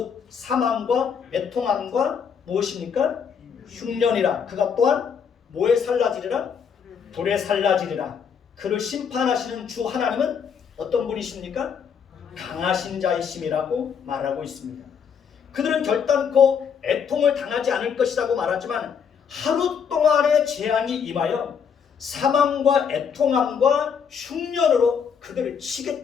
사망과 애통함과 무엇입니까? 흉년이라. 그가 또한 뭐에 살라지리라? 불에 살라지리라. 그를 심판하시는 주 하나님은 어떤 분이십니까? 강하신 자이심이라고 말하고 있습니다. 그들은 결단코 애통을 당하지 않을 것이라고 말하지만 하루 동안의 재앙이 임하여 사망과 애통함과 흉년으로 그들을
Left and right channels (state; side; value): quieter; right; 6.9 dB